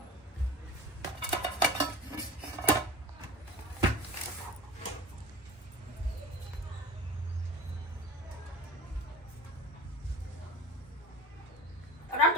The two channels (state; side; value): normal; both; correlation 0.33